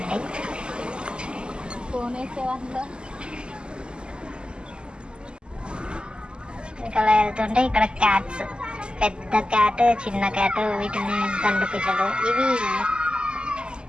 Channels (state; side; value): late; left; 0.049 ms